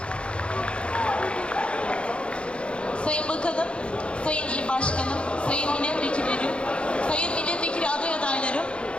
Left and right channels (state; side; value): late; right; 0.058 ms